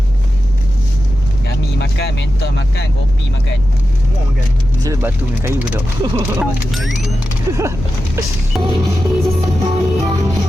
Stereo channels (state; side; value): noise; left; rumble, 10 dB below the sound